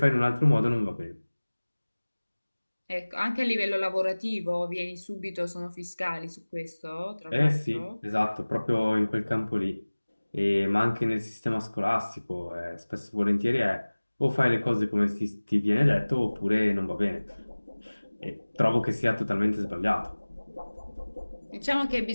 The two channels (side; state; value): both; inverted; correlation -1.00